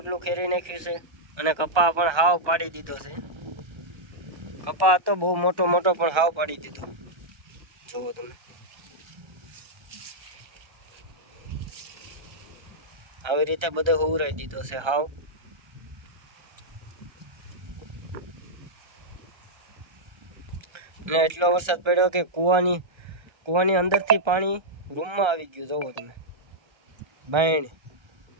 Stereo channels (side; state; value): left; late; 1.3 ms